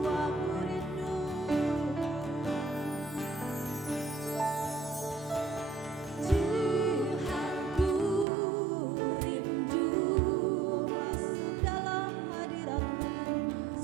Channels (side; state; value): left; drops out; at 8.2 s